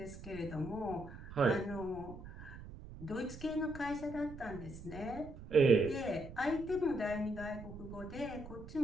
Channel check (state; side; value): noise; right; rumble, 13 dB below the sound